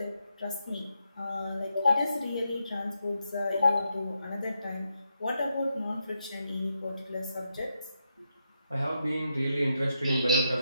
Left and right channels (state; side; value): inverted; both; correlation -0.83